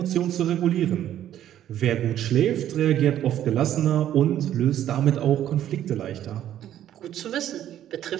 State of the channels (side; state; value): left; quieter; 11.4 dB